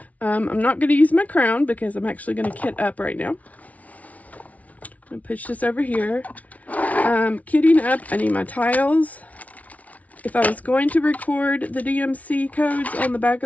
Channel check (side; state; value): right; late; 0.069 ms